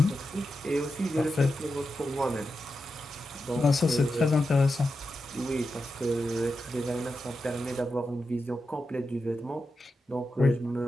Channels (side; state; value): both; normal; correlation 0.89